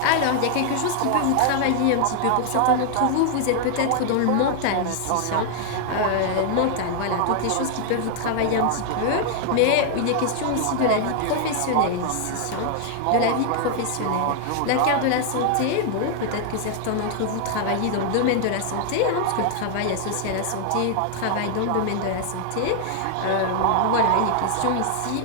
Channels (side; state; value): both; different; correlation 0.00